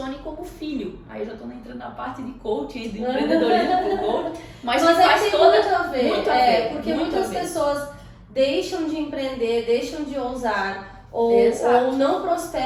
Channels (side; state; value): both; identical; correlation 1.00